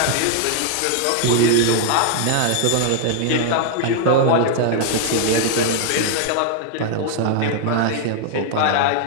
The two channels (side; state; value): both; different; correlation 0.00